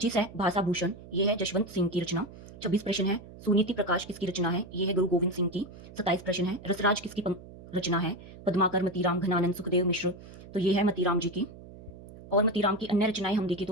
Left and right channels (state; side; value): noise; right; hum, 17 dB below the sound